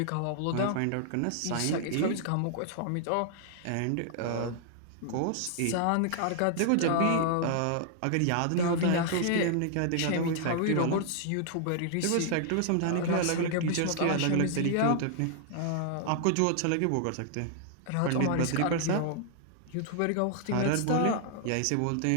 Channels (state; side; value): different; both; correlation -0.01